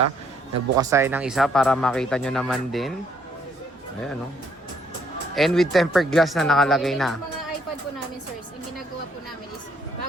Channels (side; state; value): both; normal; correlation 0.68